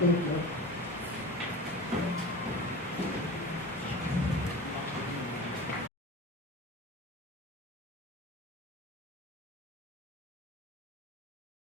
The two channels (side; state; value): both; normal; correlation 0.32